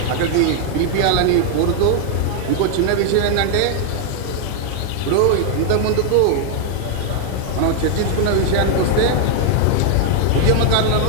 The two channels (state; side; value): different; both; correlation 0.00